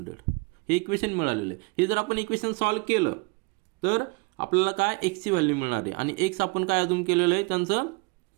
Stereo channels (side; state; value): left; quieter; 28.0 dB